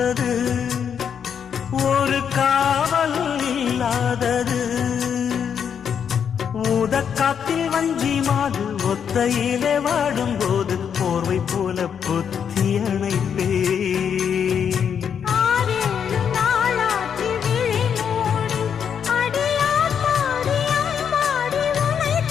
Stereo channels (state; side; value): quieter; right; 7.7 dB